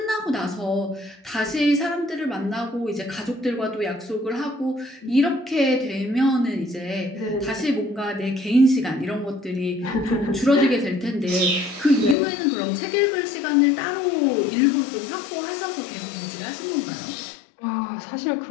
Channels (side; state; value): right; drops out; at 12.2 s